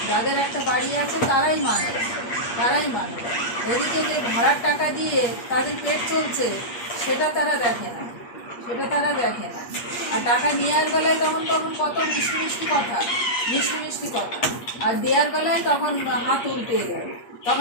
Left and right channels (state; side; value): late; right; 8.4 ms